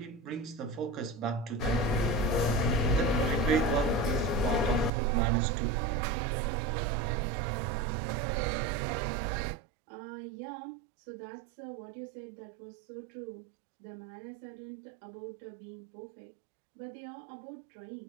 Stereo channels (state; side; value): drops out; left; at 4.9 s